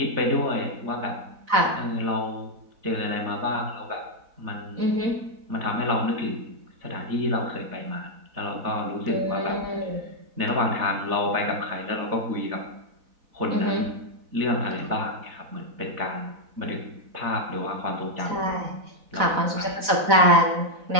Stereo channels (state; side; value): late; left; 4.0 ms